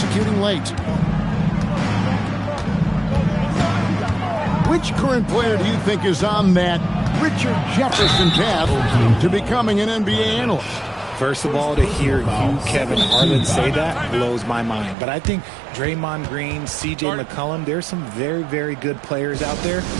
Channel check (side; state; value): left; drops out; at 15.0 s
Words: late. Which current player do you think is on that Richard Jefferson path to becoming an NBA analyst? First of all, to hear you, Kevin Harlan, say that blows my mind. But I think Draymond Green, C.J. McCollum, there's some very, very good players out there